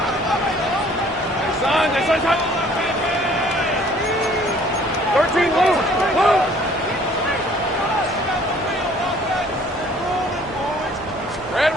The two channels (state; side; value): normal; both; correlation 0.56